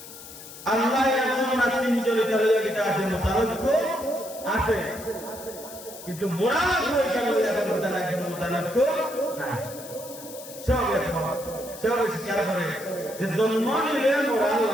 আল্লাহ এমন না তিনজনের তালিকা আছে মোতালব্য আছে কিন্তু মোরা হয়ে গেল এখন মোতালব্য নাই সব সব স্বীকার করে যে জন্ম নিলে মোরা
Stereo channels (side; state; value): left; noise; hiss, 15 dB below the sound